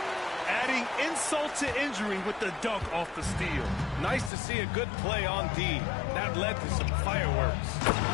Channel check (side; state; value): right; drops out; at 4.3 s